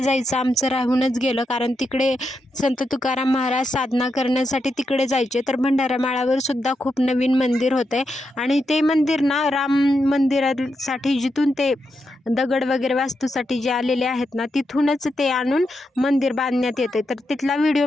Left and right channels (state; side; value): normal; both; correlation 0.85